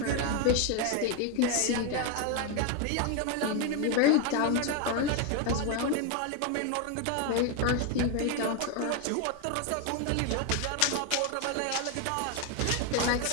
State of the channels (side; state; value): both; different; correlation 0.01